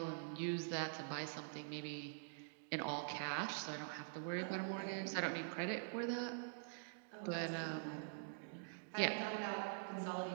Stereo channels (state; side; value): silent; left; digital silence